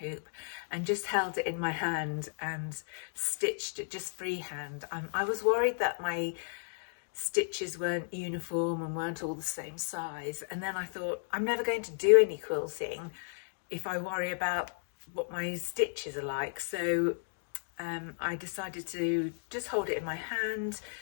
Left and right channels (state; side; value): silent; right; digital silence